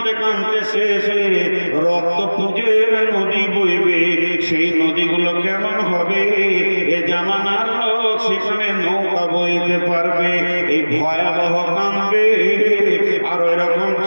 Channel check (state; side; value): inverted; both; correlation -1.00